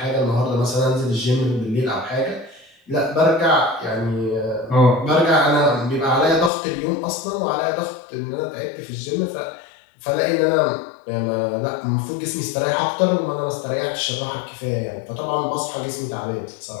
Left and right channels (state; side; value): drops out; right; at 6.5 s